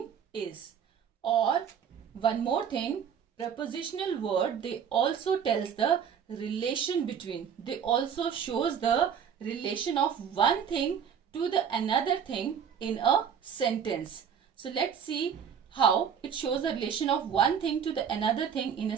is. Or one more thing, prepositional word, they also tells the relation between. They also shows the relation of one thing to the another thing in a sentence. So let's see how it shows the relation of one thing to the another thing in a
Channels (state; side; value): quieter; left; 7.7 dB